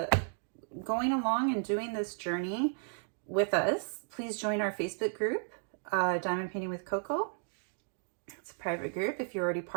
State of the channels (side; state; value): left; silent; 55 dB below the other